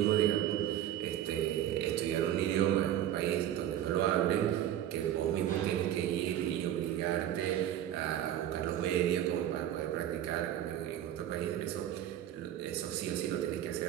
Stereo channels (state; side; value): quieter; left; 11.6 dB